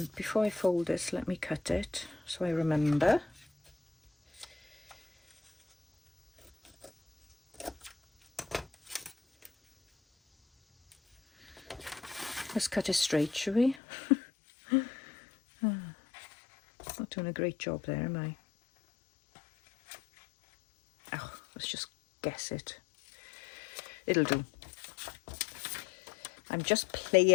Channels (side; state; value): right; drops out; at 13.8 s